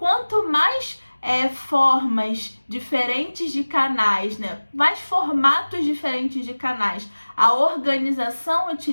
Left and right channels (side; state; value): both; inverted; correlation -1.00